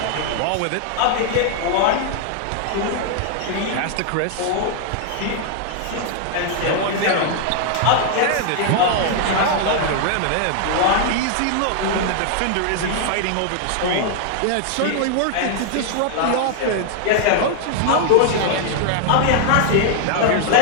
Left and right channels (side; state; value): both; different; correlation 0.00